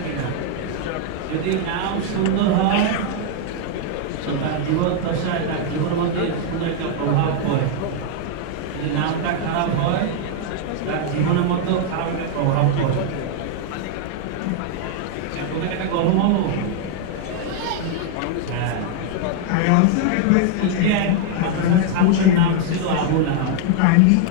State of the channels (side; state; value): both; different; correlation 0.00